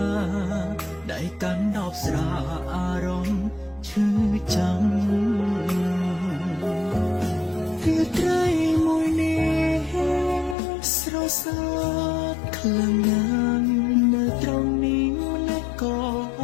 ដៃកាន់ដបស្រាអារម្មណ៍ឈឺចាំរាត្រីមួយនេះស្រសើតខ្លាំងណាស់នៅត្រង់នេះម្លេះក៏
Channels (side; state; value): right; drops out; at 10.6 s